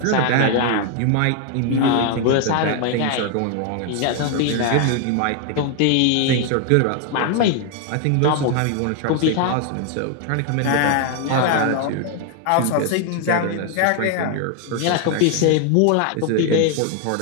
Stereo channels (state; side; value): different; both; correlation 0.00